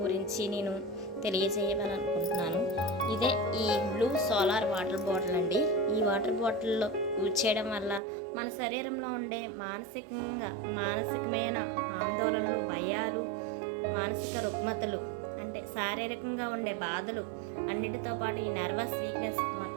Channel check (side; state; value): left; drops out; at 8.0 s